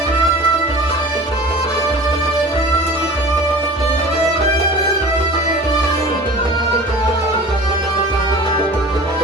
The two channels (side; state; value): both; normal; correlation 0.40